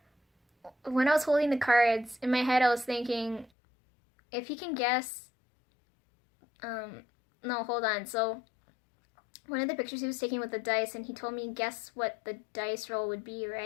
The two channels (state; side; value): drops out; right; at 3.5 s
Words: when I was holding the cards in my head, I was thinking, if he can guess, no, hold on. So one of the pictures he was taking with the dice, and he told me guess what the dice roll would be,